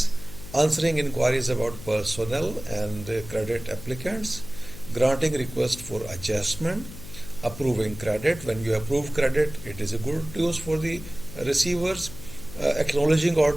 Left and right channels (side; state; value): left; noise; hum, 14 dB below the sound